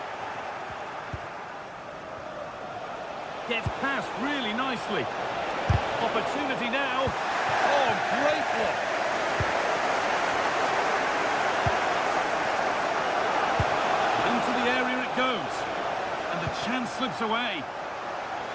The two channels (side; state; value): both; identical; correlation 1.00